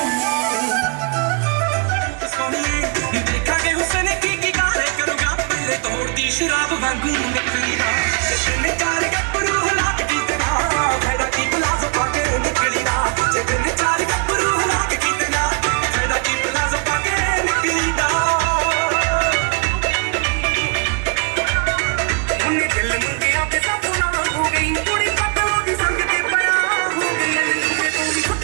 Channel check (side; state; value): left; quieter; 37.4 dB